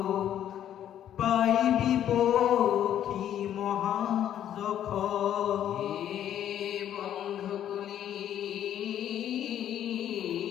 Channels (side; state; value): right; quieter; 10.7 dB